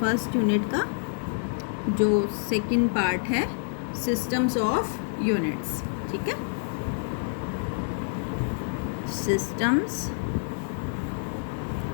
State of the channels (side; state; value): right; silent; 60 dB below the other